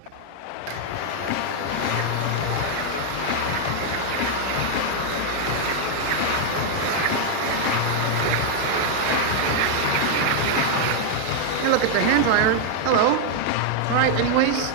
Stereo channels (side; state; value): both; different; correlation 0.00